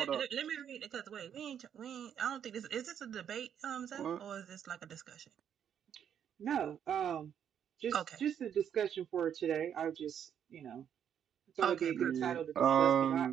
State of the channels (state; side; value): quieter; left; 8.9 dB